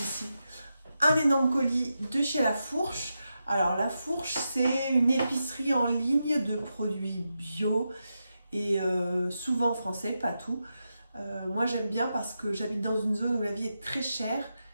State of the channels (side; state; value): both; inverted; correlation -0.88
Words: un énorme colis de chez La Fourche. Alors La Fourche, c'est une épicerie en ligne de produits bio et souvent français, pas tout. Moi j'aime bien parce que j'habite dans une zone où la vie est très chère